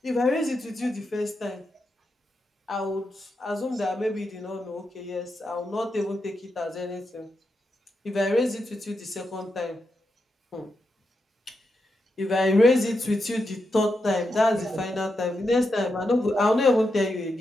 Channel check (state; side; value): normal; both; correlation 0.85